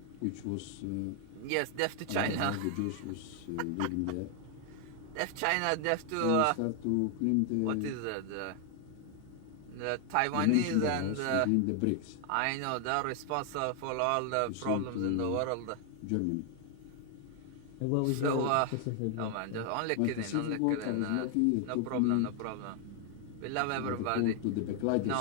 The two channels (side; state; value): both; different; correlation 0.00